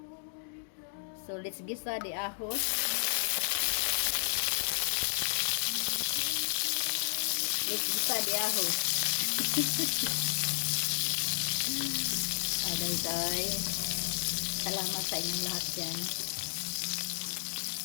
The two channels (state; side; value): silent; right; digital silence